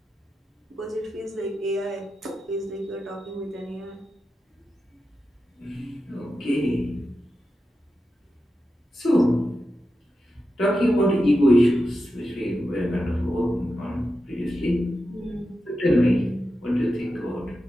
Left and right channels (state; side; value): normal; both; correlation 0.90